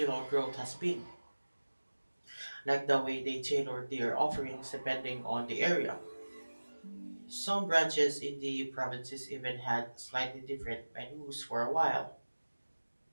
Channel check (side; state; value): both; inverted; correlation -1.00